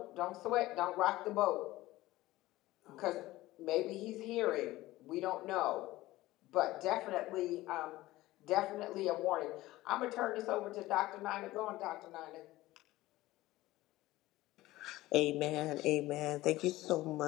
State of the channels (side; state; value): right; quieter; 17.4 dB